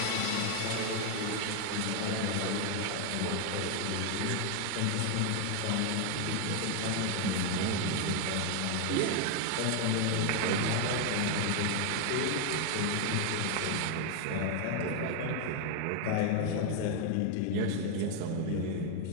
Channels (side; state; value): both; different; correlation 0.00